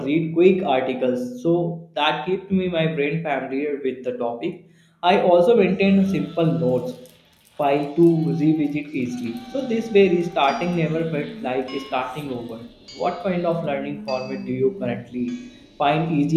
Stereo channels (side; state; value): both; identical; correlation 1.00